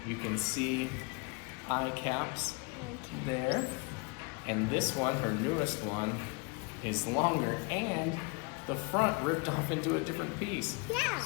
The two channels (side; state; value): right; quieter; 30.0 dB